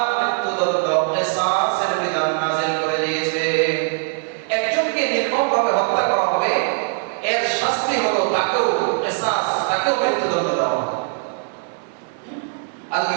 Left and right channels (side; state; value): left; silent; digital silence